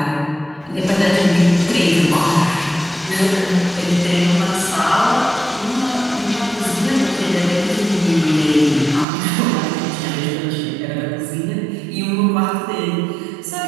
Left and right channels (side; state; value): left; drops out; at 9.1 s